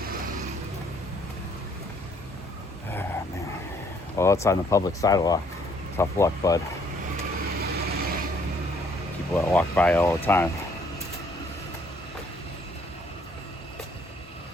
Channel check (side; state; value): both; normal; correlation 0.64